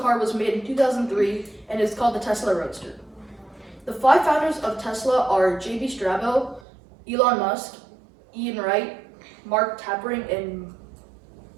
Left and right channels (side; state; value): left; drops out; at 6.6 s